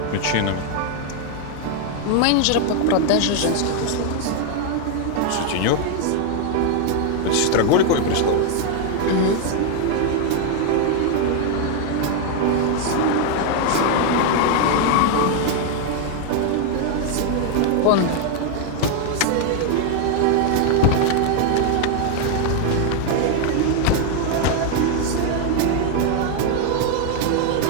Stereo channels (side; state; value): both; different; correlation 0.01